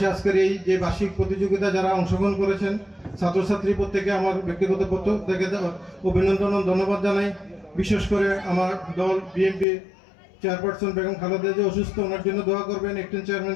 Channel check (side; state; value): right; drops out; at 9.7 s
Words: আজকের এই যে বার্ষিক প্রতিযোগিতা যারা অংশগ্রহণ করেছেন ছাত্রছাত্রী প্রত্যেকে আমার ব্যক্তিগত পক্ষ থেকে অভিনন্দন ও ধন্যবাদ জানাই। বিশেষ করে আমার দল বিএনপি চেয়ারপারসন বেগম খালেদা যে অসুস্থ, ওনার জন্য দোয়া করবেন। অ্যাক্টিং চেয়ারম্যান